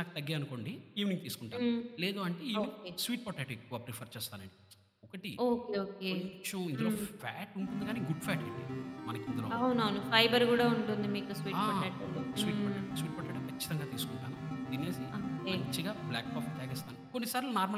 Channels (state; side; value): identical; both; correlation 1.00